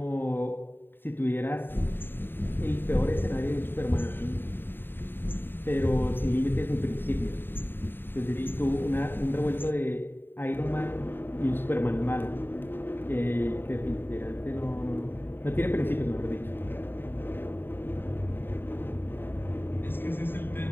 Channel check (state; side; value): late; right; 0.098 ms